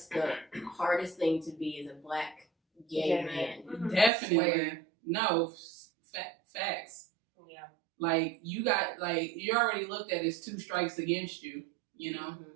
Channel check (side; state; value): left; drops out; at 4.1 s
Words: the hardest thing to be as a Black gay man. Definitely. No, facts. Yeah. Like, you're already looked at as 2 strikes against you,